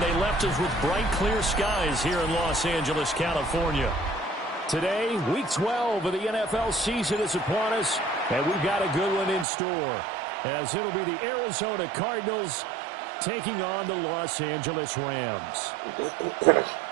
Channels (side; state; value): left; drops out; at 9.5 s